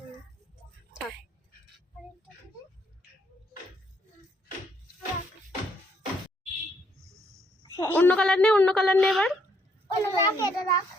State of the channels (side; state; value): both; normal; correlation 0.70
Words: থাক। অন্য কালার নে, অন্য কালার নে এবার।